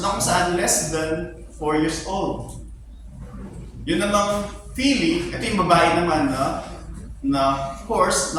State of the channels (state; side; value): identical; both; correlation 1.00